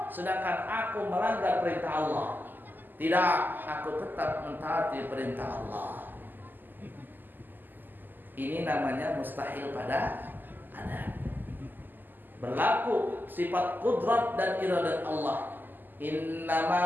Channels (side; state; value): left; late; 0.089 ms